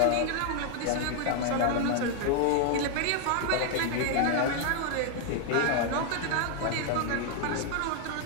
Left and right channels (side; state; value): both; different; correlation 0.00